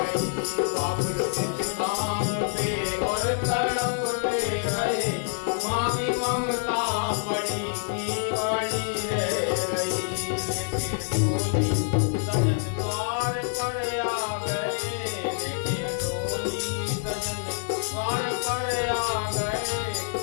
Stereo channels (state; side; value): silent; right; digital silence